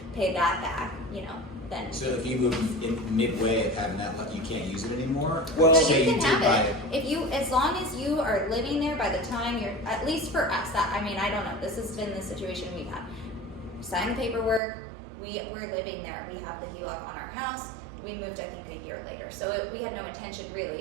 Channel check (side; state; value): left; drops out; at 14.6 s